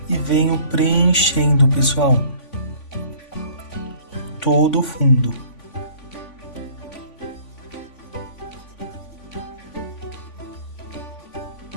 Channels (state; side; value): late; right; 3.5 ms